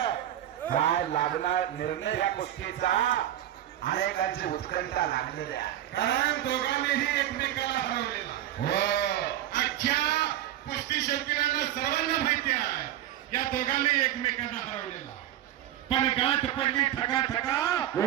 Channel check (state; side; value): quieter; left; 12.5 dB